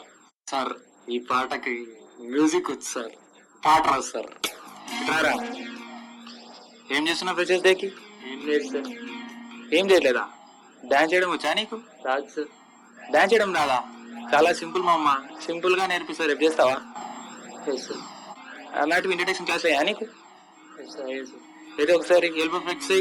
సార్ ఈ పాటకి మ్యూజిక్ వచ్చు సార్, పాట రాదు సార్. రారా. ఏం చేస్తున్నావు ఫ్రెషర్స్ డేకి? ఏం లేదు సార్. ఏం చేయలేదా? డాన్స్ చేయడం వచ్చా నీకు? రాదు సార్. డాన్స్ చేయడం రాదా? చాలా సింపుల్ మా అమ్మ, సింపుల్ గా నేర్పిస్తారు. రేపు చేస్తావా? అలాంటివి ఇంట్రడక్షన్ క్లాస్ అయ్యా నీకు? ఏదో ఒకసారి ఎల్బో ఫ్లెక్స్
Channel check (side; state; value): both; identical; correlation 1.00